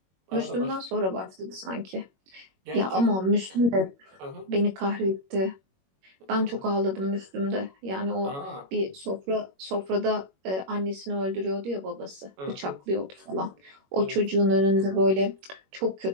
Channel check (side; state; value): left; late; 21 ms